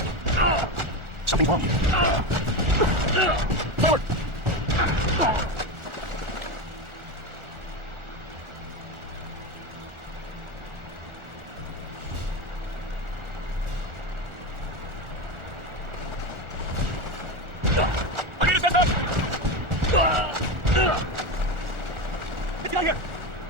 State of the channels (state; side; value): late; left; 1.4 ms